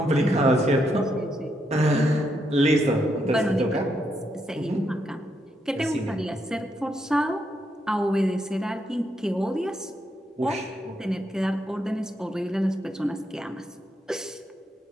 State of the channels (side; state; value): both; normal; correlation 0.79